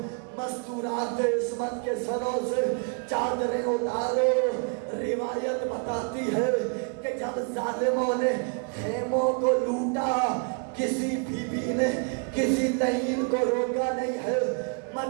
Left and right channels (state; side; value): quieter; left; 38.4 dB